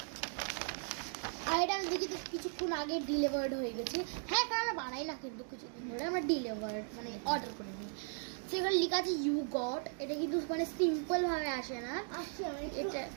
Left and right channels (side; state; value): left; silent; 53 dB below the other